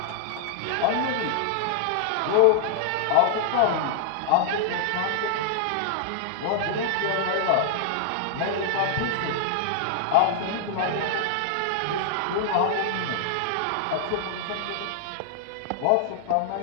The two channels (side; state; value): both; different; correlation -0.01